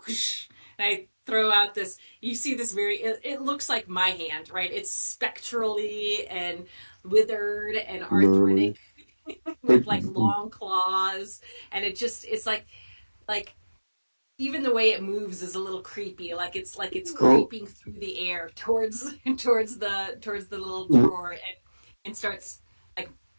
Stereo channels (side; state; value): both; inverted; correlation -1.00